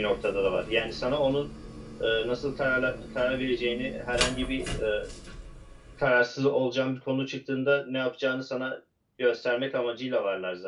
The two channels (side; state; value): both; identical; correlation 1.00